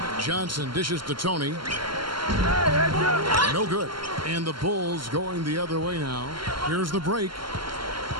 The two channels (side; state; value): left; late; 0.73 ms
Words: Johnson dishes to Tony. No good. And the Bulls going the other way now. Here's the break.